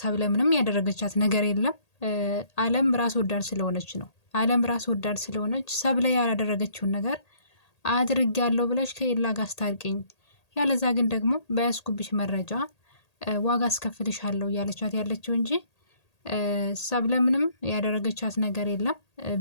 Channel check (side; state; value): right; late; 1.8 ms